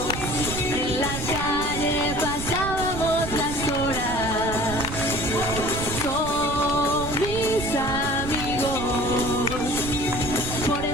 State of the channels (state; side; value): noise; right; rumble, 7 dB below the sound